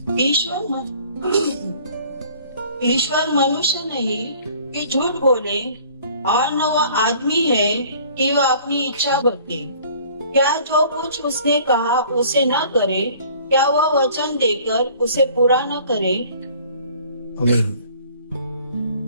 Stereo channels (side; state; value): both; inverted; correlation -0.52